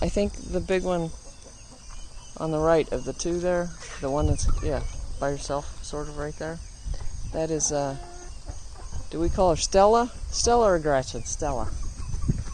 think the big one on the right of the 2 there, the one that's, by herself, sort of right there, that is, do we call her Stella? Stella or Gretchen? Stella.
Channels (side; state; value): both; identical; correlation 1.00